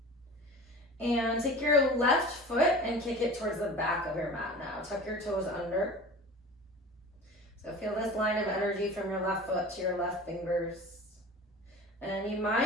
And take your left foot and kick it towards the back of your mat now. Tuck your toes under. So feel this line of energy from your left foot to your left fingers. And you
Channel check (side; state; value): both; normal; correlation 0.38